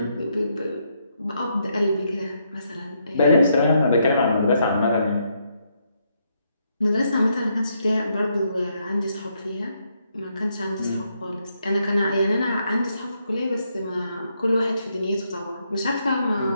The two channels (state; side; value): inverted; both; correlation -0.77